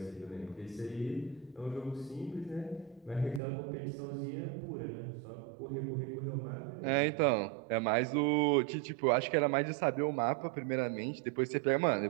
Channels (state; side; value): drops out; left; at 3.4 s